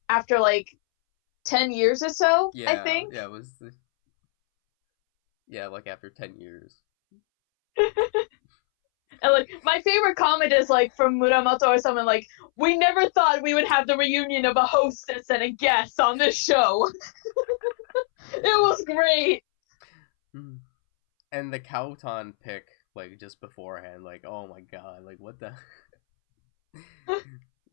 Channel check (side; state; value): right; silent; 63 dB below the other